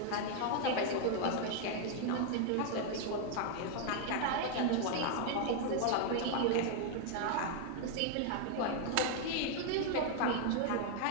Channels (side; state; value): both; different; correlation 0.00